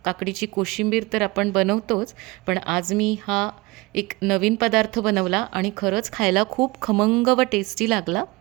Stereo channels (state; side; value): quieter; left; 23.2 dB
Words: काकडीची कोशिंबीर तर आपण बनवतोच, पण आज मी हा एक नवीन पदार्थ बनवला आणि खरंच खायला खूप खमंग व टेस्टी लागला.